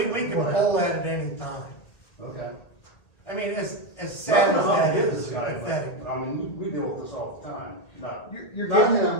can pull that at any time. Okay. I mean, as sad as that Nothing is, this guy, pathetic. but, I mean, we deal with this all the time, not. You're Not getting,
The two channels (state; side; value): late; right; 2.1 ms